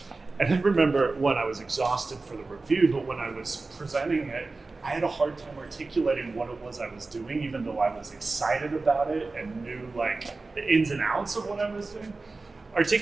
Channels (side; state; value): left; quieter; 3.6 dB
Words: And I remember when I was exhausted for the review, but when I was presenting it, I had a hard time articulating what it was I was doing, even though I was excited about it and knew like the ins and outs of what I was doing.